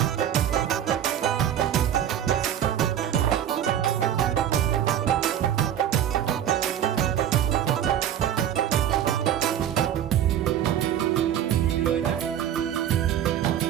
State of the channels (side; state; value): left; quieter; 10.3 dB